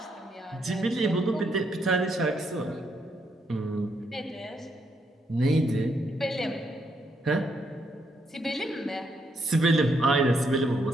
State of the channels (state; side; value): normal; both; correlation 0.76